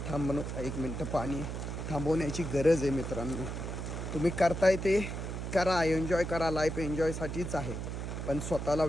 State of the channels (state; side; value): noise; right; hum, 5 dB below the sound